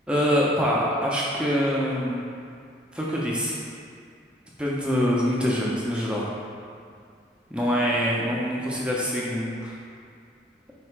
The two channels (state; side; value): normal; both; correlation 0.58